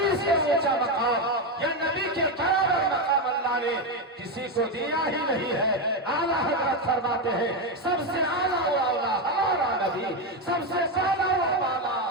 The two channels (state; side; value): normal; both; correlation 0.10